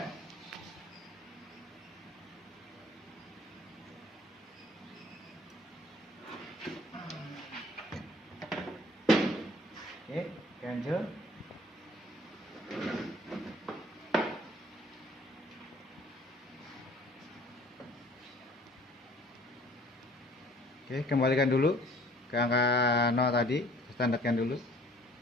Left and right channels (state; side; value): normal; both; correlation 0.54